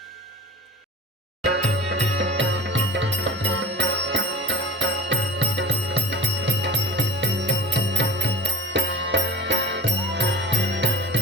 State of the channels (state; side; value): normal; both; correlation 0.37